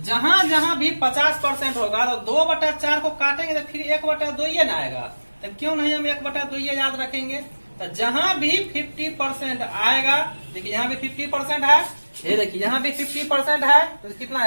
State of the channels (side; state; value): both; inverted; correlation -1.00